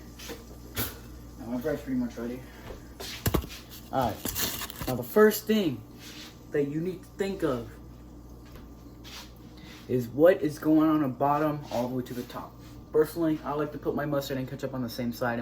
My bread's pretty much ready. Alright. Now the first thing that you need to think of is what is going on the bottom all the way to the top. Personally, I like to put my mustard and ketchup on the same side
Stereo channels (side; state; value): both; identical; correlation 1.00